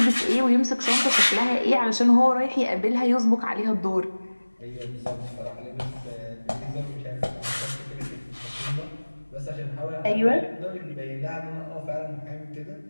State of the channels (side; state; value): both; inverted; correlation -1.00